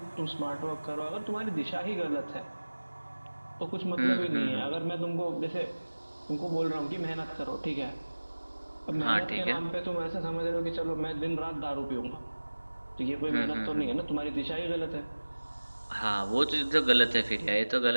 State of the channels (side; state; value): both; inverted; correlation -1.00